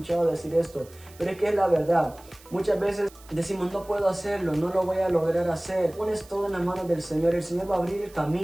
decir esto, pero es que es la verdad. Muchas veces decimos: no puedo hacerlo, no lo voy a lograr hacer. Pones todo en las manos del Señor, el Señor va a abrir el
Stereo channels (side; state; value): right; noise; hiss, 24 dB below the sound